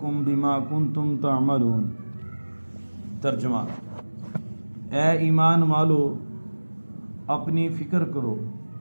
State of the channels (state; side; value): inverted; both; correlation -1.00